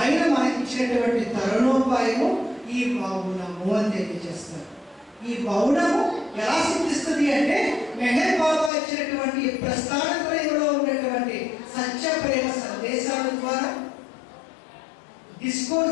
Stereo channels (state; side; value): drops out; right; at 8.7 s